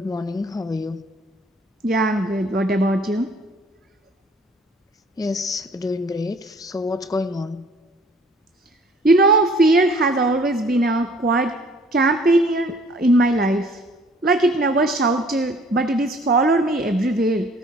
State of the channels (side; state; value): both; normal; correlation 0.55